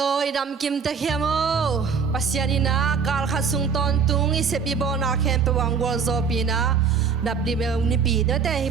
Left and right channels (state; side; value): quieter; left; 5.9 dB